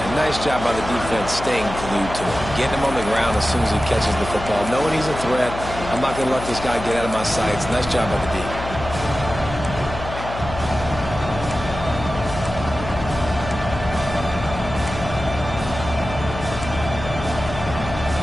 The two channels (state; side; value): noise; left; hum, 9 dB below the sound